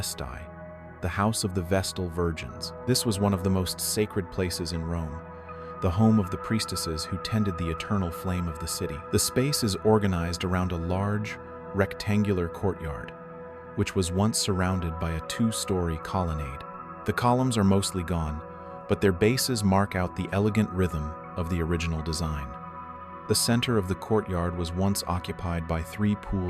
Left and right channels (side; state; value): both; identical; correlation 1.00